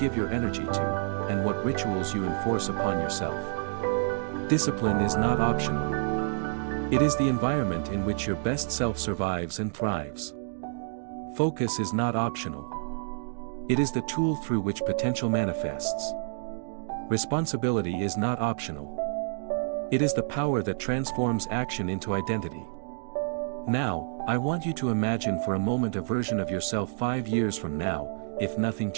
your energy to, and what rituals you enforce upon yourself. Discipline is not optional. It is the environment in which your best self survives and thrives. Focus is not optional. It is the tool through which potential manifests. Responsibility is not optional. It is the power that transforms action into identity. Now, I want you to imagine for a moment a version of yourself 5 years from now, if nothing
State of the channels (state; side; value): silent; left; digital silence